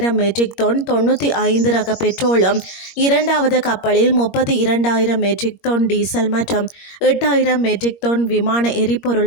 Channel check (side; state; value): right; late; 21 ms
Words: மெட்ரிக் டன் 95 ரக பெட்ரோலும், இரண்டாவது கப்பலில் 32,000 மெட்ரிக் டன் டீசல் மற்றும் 8,000 மெட்ரிக் டன் விமான